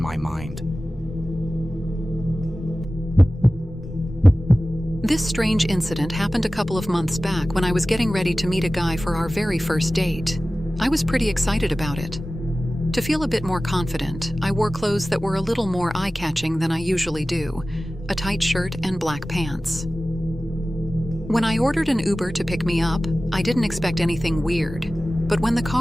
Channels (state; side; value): normal; both; correlation 0.96